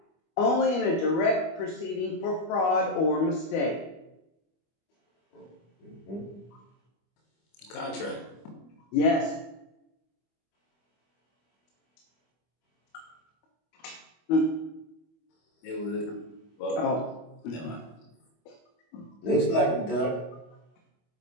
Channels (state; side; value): late; right; 25 ms